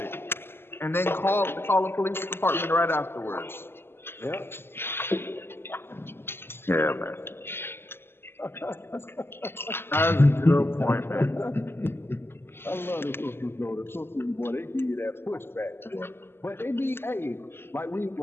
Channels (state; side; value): late; right; 0.11 ms